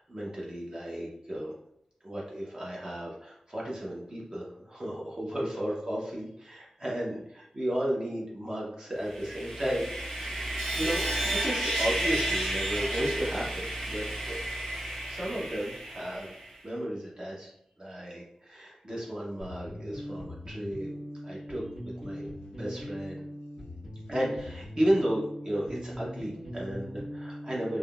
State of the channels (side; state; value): both; normal; correlation 0.91